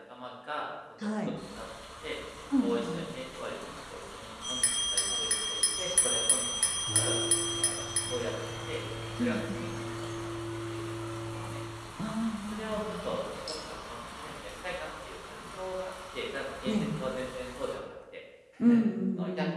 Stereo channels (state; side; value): identical; both; correlation 1.00